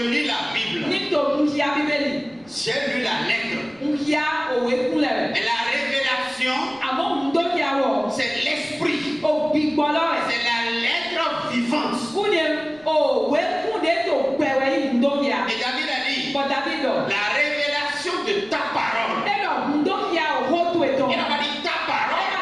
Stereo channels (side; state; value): left; noise; rumble, 29 dB below the sound